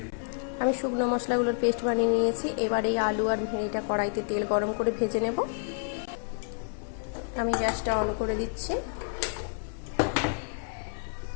আমি শুকনো মশলাগুলোর পেস্ট বানিয়ে নিয়েছি। এবার এই আলু আর ভেড়িটা কড়াইতে তেল গরম করে ভেজে নেব। আমি গ্যাসটা অন করে দিচ্ছি।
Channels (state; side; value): silent; right; 58 dB below the other